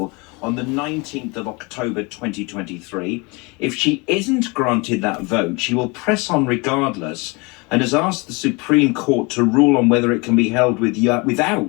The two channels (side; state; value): right; quieter; 27.7 dB